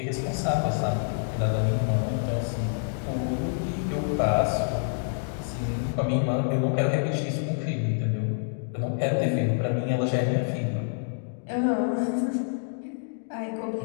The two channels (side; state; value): right; silent; digital silence